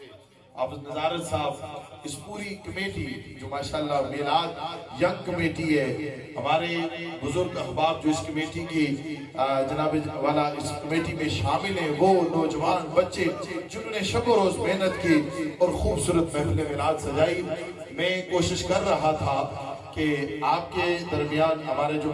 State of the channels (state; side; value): identical; both; correlation 1.00